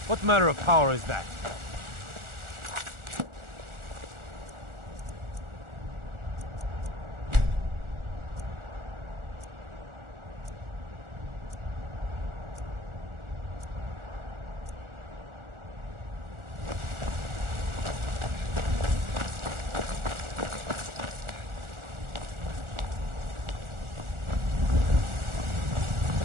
What manner of power is that?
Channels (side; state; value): left; late; 1.4 ms